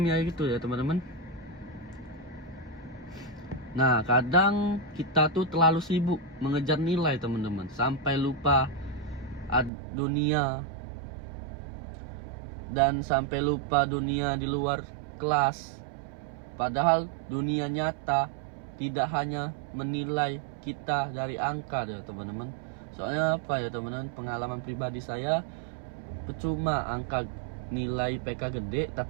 ya gitu ya teman-teman. Nah, kadang kita tuh terlalu sibuk mengejar nilai teman-teman, sampai lupa dunia, dan sampai lupa dunia di luar kelas. Padahal dunia nyata tidak hanya menilai kita dari angka ya teman-teman. Soalnya apa ya teman-teman, pengalaman pribadi saya, percuma angka nilai IPK gede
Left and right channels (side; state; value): left; drops out; at 9.7 s